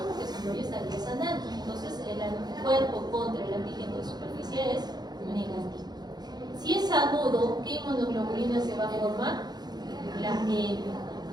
porque si no ya estaría sanando. Entonces el anticuerpo contra el antígeno de superficie es negativo. Si es agudo, ¿qué inmunoglobulina se va a formar? La M.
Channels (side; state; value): left; late; 0.20 ms